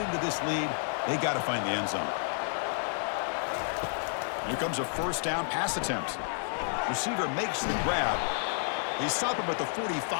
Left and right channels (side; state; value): right; silent; digital silence